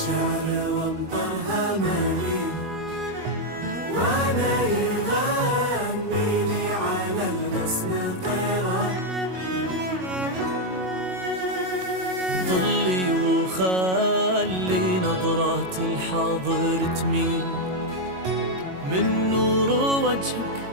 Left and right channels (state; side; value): late; left; 22 ms